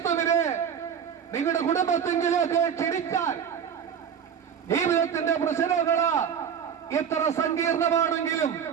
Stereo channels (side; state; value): left; quieter; 7.8 dB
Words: നിങ്ങളുടെ കുടുംബത്തിലേക്ക് ക്ഷണിച്ചാൽ ജീവിതത്തിന്റെ പ്രശ്നങ്ങൾ എത്ര സങ്കീർണമാണെങ്കിലും